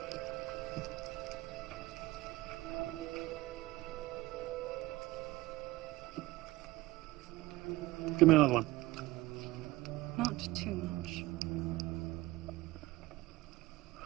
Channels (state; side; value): quieter; left; 19.0 dB